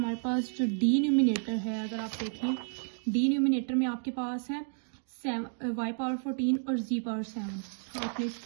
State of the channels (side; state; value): left; silent; 57 dB below the other